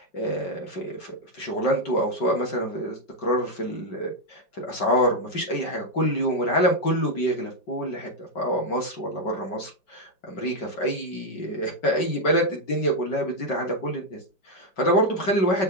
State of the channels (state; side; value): late; right; 5.3 ms